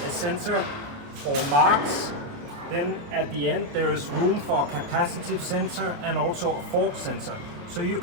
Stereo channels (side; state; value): left; late; 29 ms